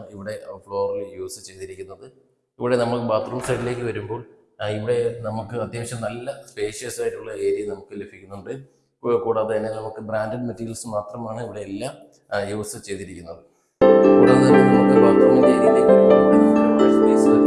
ഇവിടെ ഫ്ലോറിൽ യൂസ് ചെയ്തിരിക്കുന്നത്. ഇവിടെ നമുക്ക് ബാത്റൂം സൈഡിലേക്ക് വരുമ്പോൾ ഇവിടെ നമുക്ക് അത്യാവശ്യം നല്ല സ്പേഷ്യസ് ആയിട്ടുള്ള ഏരിയ നമുക്ക് ലഭിക്കുന്നുണ്ട്. കൂടാതെ തന്നെ നമുക്ക് ബ്രാൻഡഡ് മെറ്റീരിയൽസ് മാത്രമാണ് ഇവിടെ എല്ലാം യൂസ് ചെയ്തിരിക്കുന്നത്. കൂടാതെ തന്നെ നമുക്ക് ബാത്റൂമിൻ്റെ ഏരിയയിലേക്ക് വരുമ്പോൾ വാഷ് സ്പേസ്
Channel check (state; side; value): identical; both; correlation 1.00